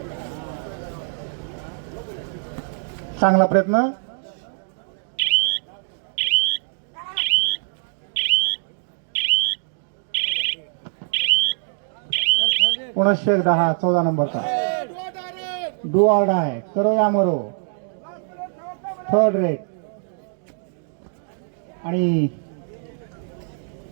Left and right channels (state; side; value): silent; left; 63 dB below the other